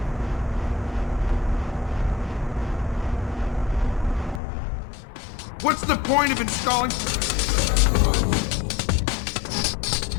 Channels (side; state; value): right; drops out; at 4.4 s